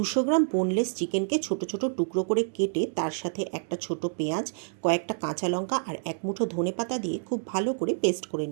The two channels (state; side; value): silent; left; digital silence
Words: গ্রাম বোনলেস চিকেনকে ছোট ছোট টুকরো করে কেটে তার সাথে একটা ছোট পেঁয়াজ, কয়েকটা কাঁচা লঙ্কা আর এক মুঠো ধনেপাতা দিয়ে খুব ভালো করে পেস্ট করে